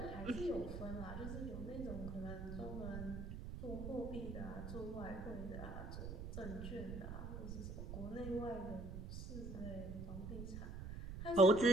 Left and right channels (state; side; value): noise; right; rumble, 7 dB below the sound